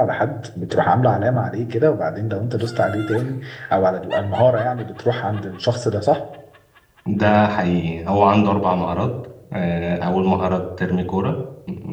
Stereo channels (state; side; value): identical; both; correlation 1.00